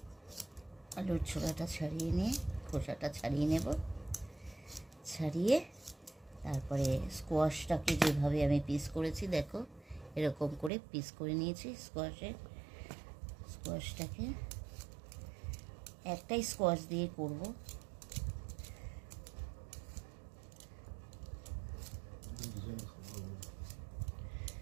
আলুর ছোলাটা ছাড়িয়ে নিয়ে খোসাটা ছাড়িয়ে নেব, ছাড়িয়ে তারপরে স্কোয়াশটাকে যেভাবে আমি পিস করেছি দেখো এরকম করে পিস করে নিয়েছি। স্কোয়াশটাকে একটাই স্কোয়াশ দিয়ে করব।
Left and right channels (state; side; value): drops out; left; at 10.7 s